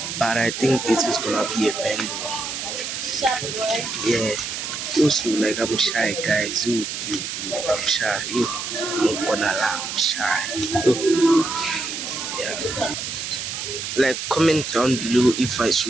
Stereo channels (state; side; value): noise; right; hiss, 5 dB below the sound